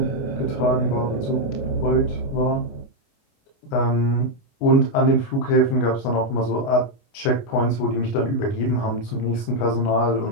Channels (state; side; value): late; right; 29 ms